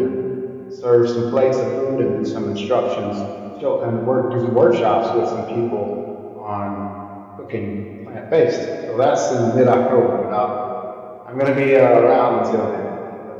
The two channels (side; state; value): both; identical; correlation 1.00